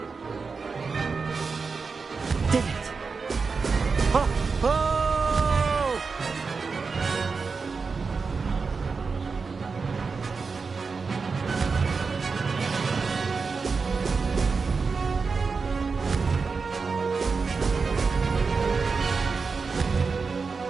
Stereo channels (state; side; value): quieter; left; 4.8 dB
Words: Did it. Oh! Oh!